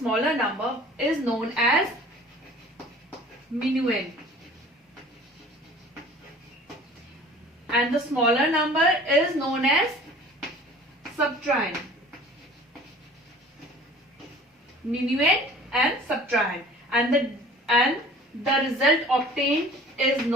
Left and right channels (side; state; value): both; normal; correlation 0.46